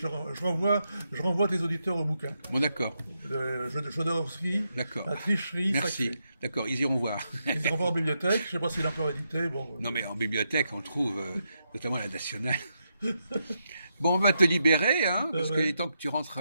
renvoie tes auditeurs au bouquin. Bon, d'accord. Jodorowsky, La tricherie Merci. Sacrée. D'accord, ils iront voir. Ils iront voir en bibliothèque. Je ne sais pas s'il est encore édité. Bon, non, mais en bibliothèque, on le trouve, notamment à la Nationale. Bon, on va te libérer, hein, parce qu'il est temps que tu rentres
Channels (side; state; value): both; inverted; correlation -0.83